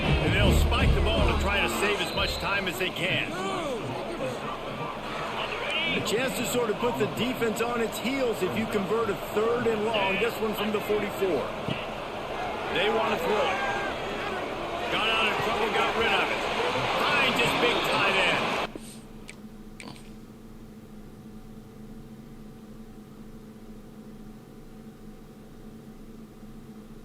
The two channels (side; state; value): both; identical; correlation 1.00